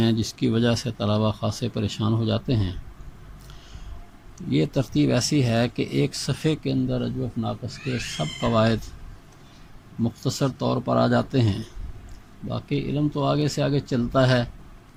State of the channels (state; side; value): identical; both; correlation 1.00